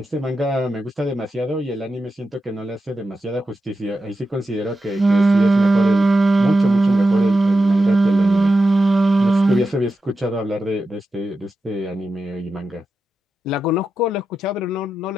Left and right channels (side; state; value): both; normal; correlation 0.90